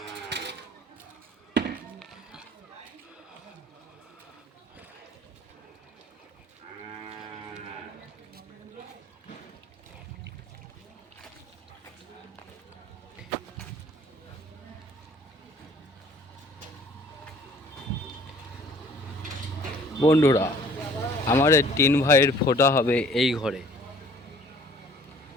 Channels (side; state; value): both; normal; correlation 0.54